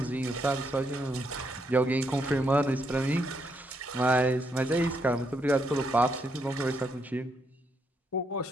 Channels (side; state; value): both; normal; correlation 0.77